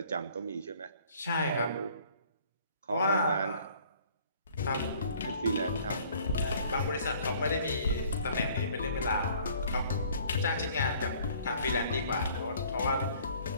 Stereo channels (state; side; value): inverted; both; correlation -0.56